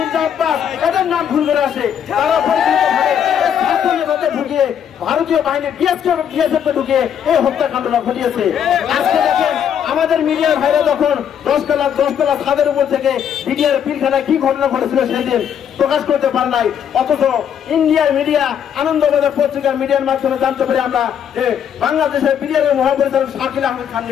আব্বাস, এদের নাম ভুল করে আসে। তারা পরিকল্পিতভাবে ঢুকিয়ে ভারতীয় বাহিনী বিএসএফকে ঢুকিয়ে এই হত্যাকাণ্ডটা ঘটিয়েছে। আজকে দেখেন আমাদের মিডিয়ার ভাইরা যখন 10 তলা ছাদের উপর থেকে মিডিয়ার পিলখানায় কি ঘটনা ঘটেছিল সেদিন প্রকাশ করতে পারে নাই, অথচ ইন্ডিয়ার মিডিয়া আনন্দবাজার পত্রিকার মিডিয়ার মাধ্যমে জানতে পারি আমরা যে বাংলাদেশের মিডিয়ার মহাপরিচালক শাকিল আহমেদ খান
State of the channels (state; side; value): quieter; right; 8.7 dB